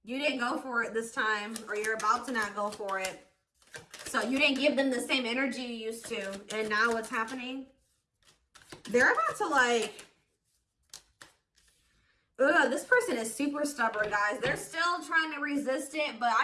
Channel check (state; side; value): identical; both; correlation 1.00